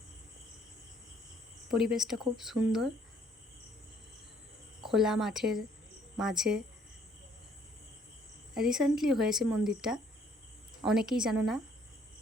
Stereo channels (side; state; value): both; normal; correlation 0.62